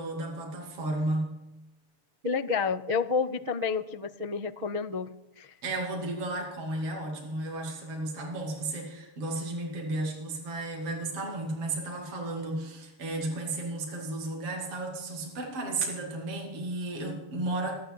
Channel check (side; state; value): left; late; 6.9 ms